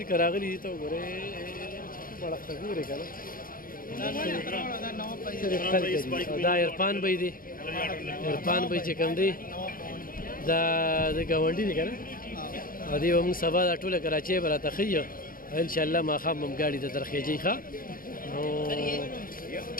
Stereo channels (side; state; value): right; late; 0.41 ms